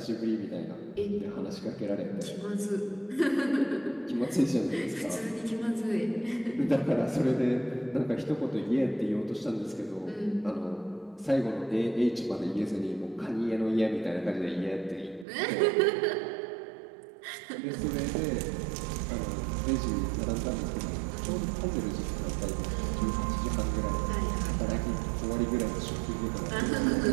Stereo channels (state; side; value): drops out; left; at 15.2 s